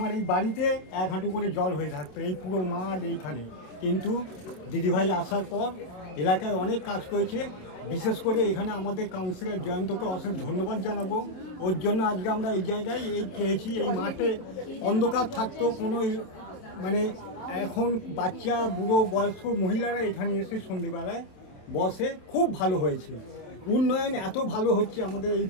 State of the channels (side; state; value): right; late; 27 ms